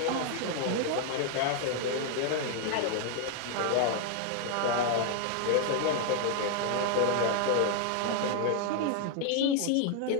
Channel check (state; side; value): different; both; correlation 0.00